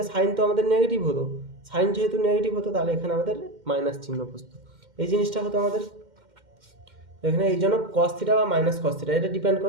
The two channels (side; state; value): left; late; 2.1 ms